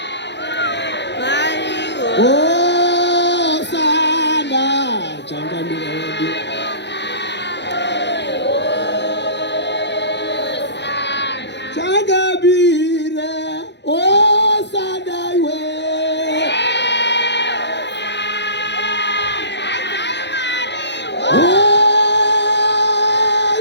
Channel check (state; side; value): late; right; 0.51 ms